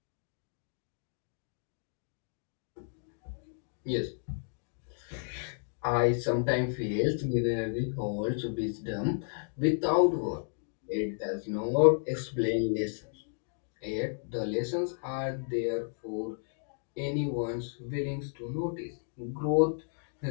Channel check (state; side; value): silent; right; digital silence